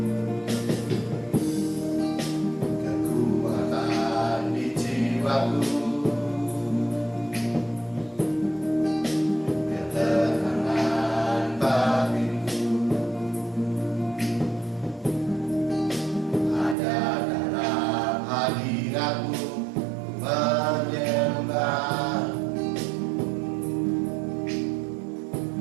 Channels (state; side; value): drops out; left; at 16.8 s